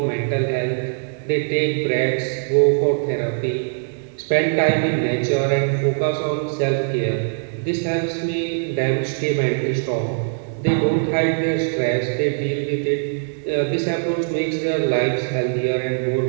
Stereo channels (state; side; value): silent; left; digital silence